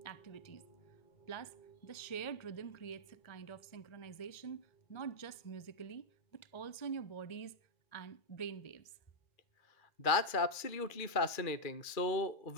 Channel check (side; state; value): right; late; 2.3 ms